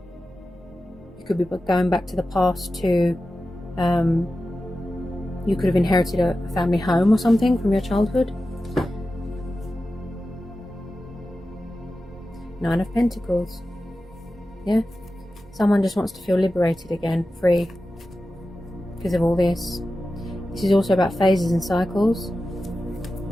You could be going back to the past to... you could have inherited a family home or something from your childhood. Nine of Pentacles. Yeah. Someone just wants to feel liberated again, free. Because of all this. This is also about phases and cycles.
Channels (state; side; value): normal; both; correlation 0.93